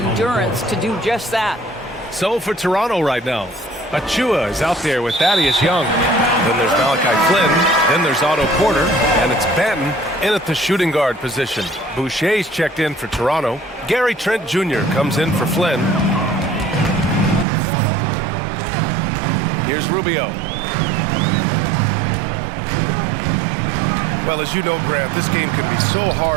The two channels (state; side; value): drops out; left; at 17.4 s